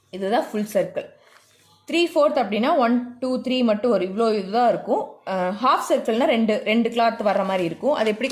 இதுதான் ஃபுல் சர்க்கிள். 3/4 அப்படின்னா 1 2 3 மட்டும் ஒரு இதுதான் இருக்கும். ஹாஃப் சர்க்கிள்னா ரெண்டு கிளாத் வர்ற மாதிரி இருக்கும். அது எப்படி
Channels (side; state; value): both; identical; correlation 1.00